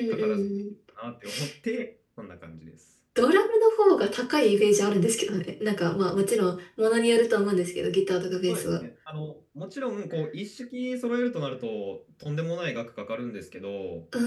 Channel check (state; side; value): identical; both; correlation 1.00